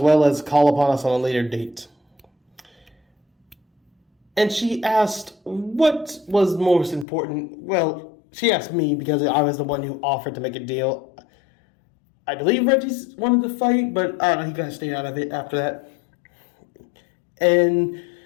well as call upon us on a later date. And she asked what was most important. Well, she asked me because I was the one who offered to make a deal. I believe Reggie wanted to fight, but I don't know, he kind of stayed out of it after that. And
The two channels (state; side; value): drops out; right; at 7.1 s